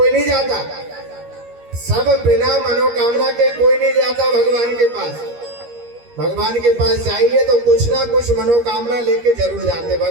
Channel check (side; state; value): left; late; 13 ms